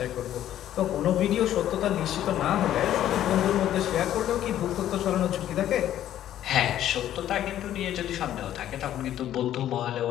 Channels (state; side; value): quieter; right; 11.9 dB